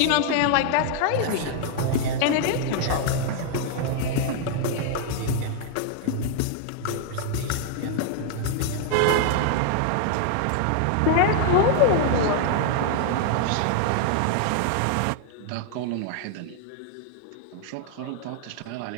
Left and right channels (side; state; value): both; different; correlation 0.00